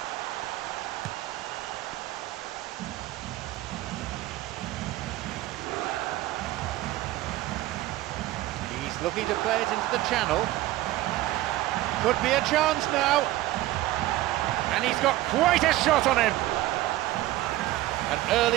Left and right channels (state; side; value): quieter; left; 16.3 dB